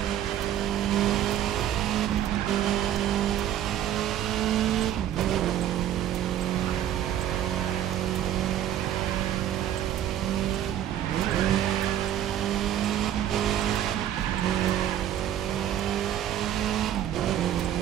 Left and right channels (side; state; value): left; quieter; 11.2 dB